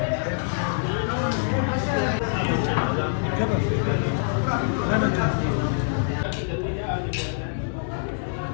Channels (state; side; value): silent; right; digital silence